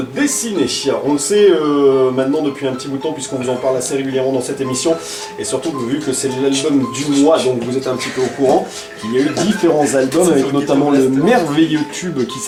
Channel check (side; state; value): both; identical; correlation 1.00